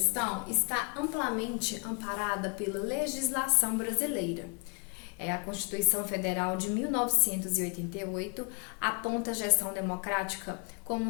está amplamente amparada pela legislação brasileira. A Constituição Federal de 1988 aponta a gestão democrática como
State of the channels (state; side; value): quieter; right; 36.5 dB